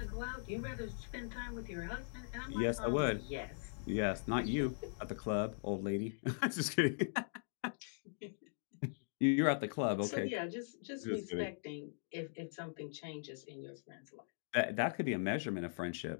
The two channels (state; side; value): silent; right; digital silence